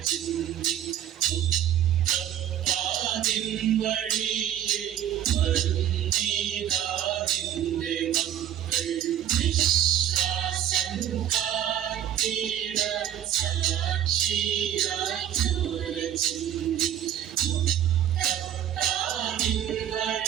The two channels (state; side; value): quieter; left; 10.7 dB